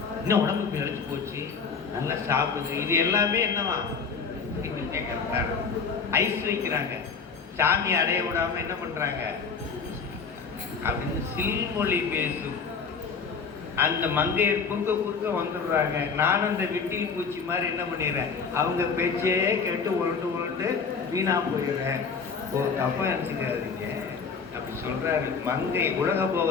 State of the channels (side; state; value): right; quieter; 5.5 dB